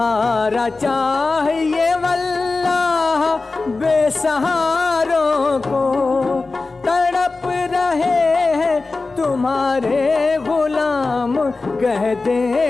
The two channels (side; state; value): right; quieter; 3.7 dB